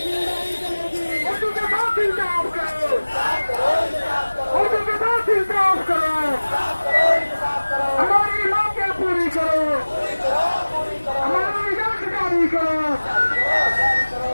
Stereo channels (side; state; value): both; inverted; correlation -1.00